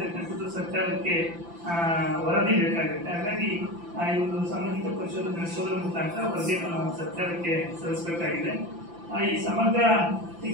ಸರ್ಕಾರಕ್ಕೆ ವರದಿ ಬೇಕಾಗುತ್ತೆ. ಹಾಗಾಗಿ ಈ ಒಂದು ಸಾಮಾಜಿಕ ಪರಿಶೋಧನೆ ನಡೆಸೋದ್ರ ಮುಖಾಂತರ ವರದಿಯನ್ನು ನಾವು ಸರ್ಕಾರಕ್ಕೆ ಸಲ್ಲಿಸಬೇಕಾಗಿದೆ. ಈ ಸಮಗ್ರ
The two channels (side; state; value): left; late; 5.8 ms